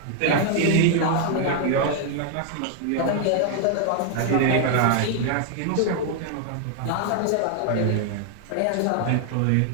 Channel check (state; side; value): different; both; correlation 0.00